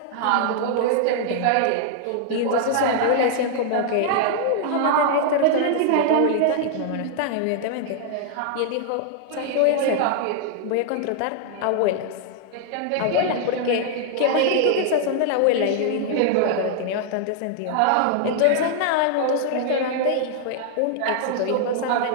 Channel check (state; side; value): different; both; correlation -0.01